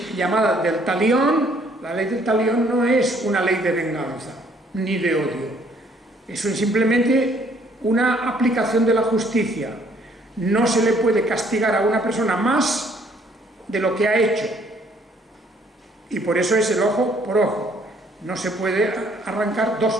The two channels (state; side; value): normal; both; correlation 0.63